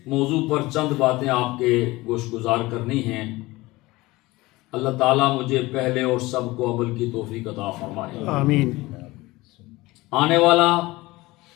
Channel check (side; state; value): right; quieter; 20.4 dB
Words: موضوع پر چند باتیں آپ کے گوش گزار کرنی ہیں۔ اللہ تعالیٰ مجھے پہلے اور سب کو عمل کی توفیق عطا فرمائے۔ آمین۔ آنے والا